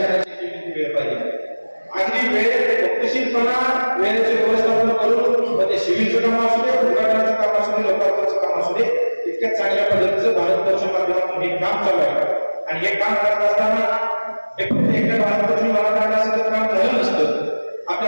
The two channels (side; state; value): both; inverted; correlation -1.00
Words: वेळ पाहिजे. अगदी वेळ गतिशीलपणा, वेळेचे व्यवस्थापन करून ते सिव्हिलचं काम असू दे, उद्घाटनाचं काम असू दे, लोकार्पणचं काम असू दे, इतक्या चांगल्या पद्धतीचं भारत फोर्सच्या माध्यमातून हे काम चालू आहे. आणि हे काम करत असताना हे फक्त एकट्या भारत फोर्सची मराठा काम झालं नसतं.